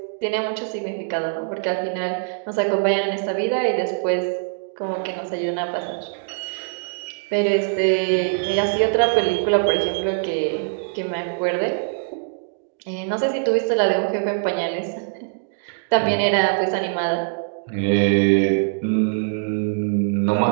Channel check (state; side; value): silent; left; digital silence